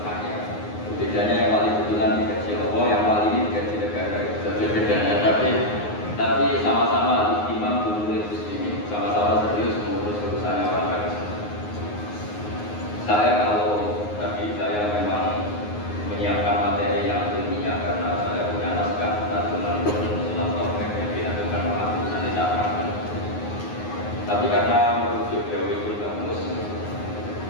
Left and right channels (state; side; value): late; right; 9.6 ms